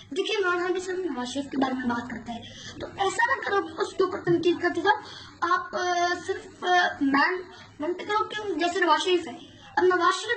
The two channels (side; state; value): both; identical; correlation 1.00